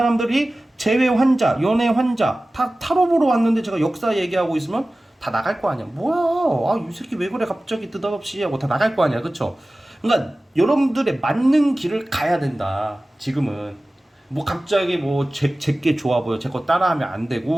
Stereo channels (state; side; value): normal; both; correlation 0.97